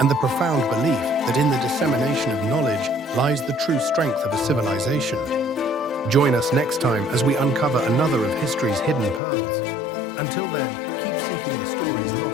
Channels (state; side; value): drops out; right; at 9.2 s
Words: the profound belief that in the dissemination of knowledge lies the true strength of a civilization. Join us next time as we uncover another of history's hidden pearls. Until then, keep seeking the stories